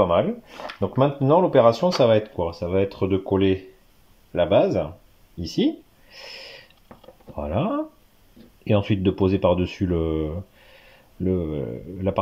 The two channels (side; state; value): both; identical; correlation 1.00